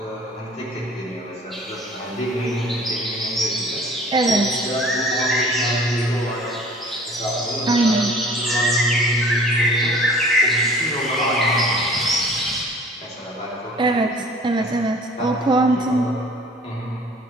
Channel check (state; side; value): normal; both; correlation 0.49